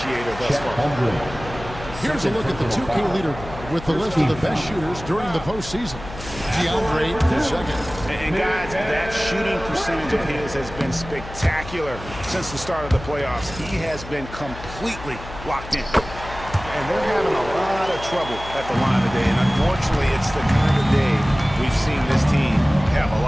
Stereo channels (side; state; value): left; noise; hum, 13 dB below the sound